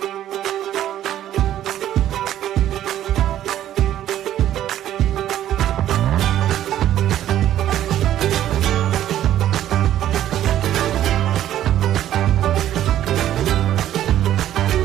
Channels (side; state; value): left; quieter; 12.0 dB